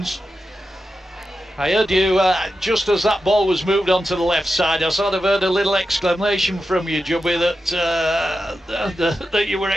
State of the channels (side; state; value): both; normal; correlation 0.90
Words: I heard you, just as that ball was moved onto the left side, I sort of heard a little exclamation from you, Jubby, that you were